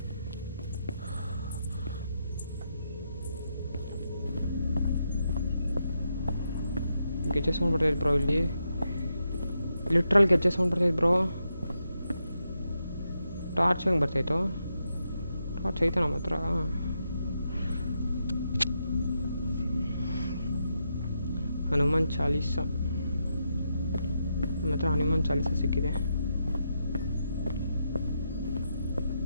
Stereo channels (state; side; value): inverted; both; correlation -0.83